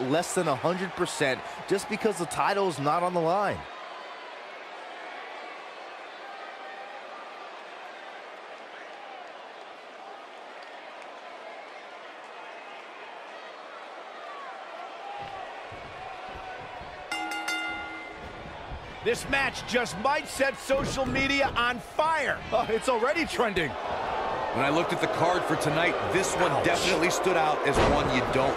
than 100% just because the title is not on the line. This match just might set social media on fire. Oh, it's already trending. When I looked at the card for tonight, this one definitely stood out as one you don't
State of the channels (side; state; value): both; identical; correlation 1.00